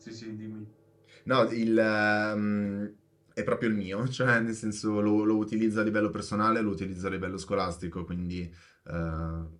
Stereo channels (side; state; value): both; identical; correlation 1.00